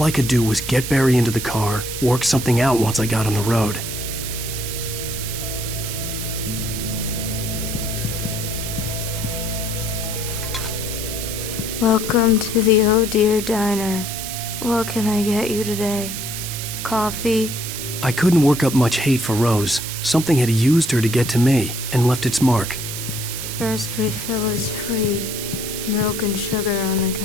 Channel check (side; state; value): right; noise; hiss, 6 dB below the sound